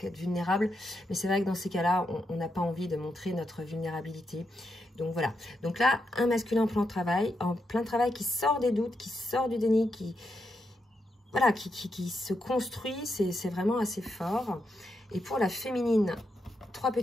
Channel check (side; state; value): both; normal; correlation 0.83